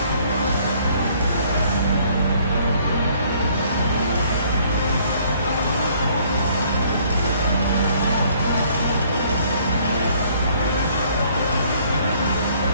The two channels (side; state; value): both; inverted; correlation -0.61